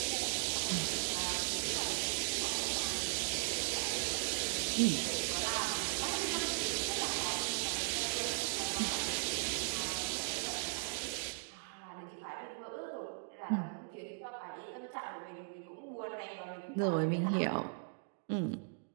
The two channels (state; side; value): silent; left; digital silence